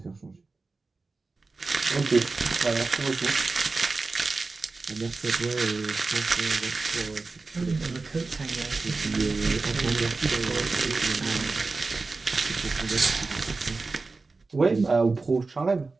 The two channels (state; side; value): quieter; left; 3.8 dB